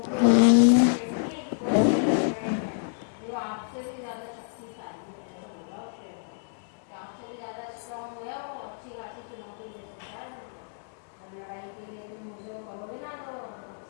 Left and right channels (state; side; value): silent; right; 59 dB below the other